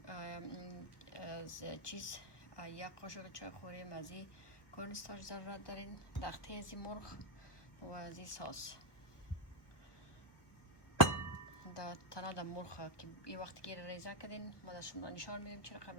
از چیز، 1 قاشق چای خوری مزی کورنستاش ضرورت دارین، تخته از مرغ و از این ساس. تنها در مرغ که یه وقتی که ریزه کردین ما در شما نشان میدیم چه رقم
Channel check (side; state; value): right; late; 1.1 ms